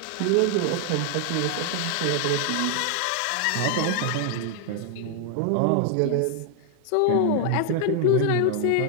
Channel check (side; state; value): both; different; correlation 0.00